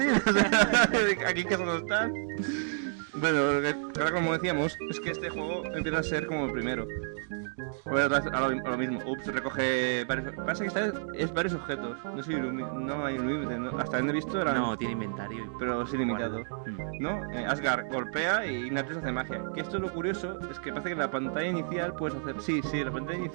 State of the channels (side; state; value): left; silent; digital silence